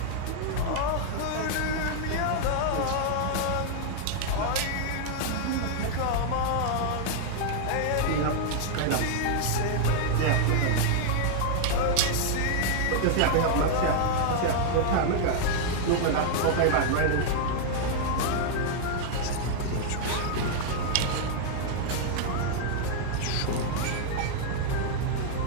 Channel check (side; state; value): both; different; correlation -0.01